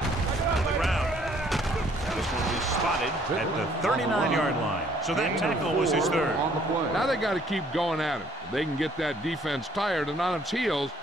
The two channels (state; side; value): normal; both; correlation 0.62